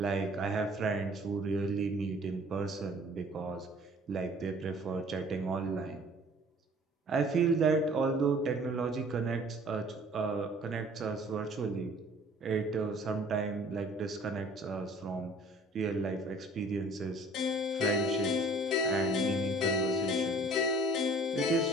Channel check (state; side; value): normal; both; correlation 0.52